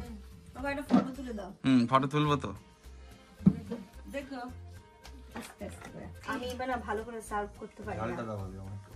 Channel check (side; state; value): both; identical; correlation 1.00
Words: বাবা একটা ফটো তুলে দাও। ফটো তুলবো তো। দেখো আস্তে আস্তে করে। আমি এবার না ভালো করে সার্ভ করতে পারি না।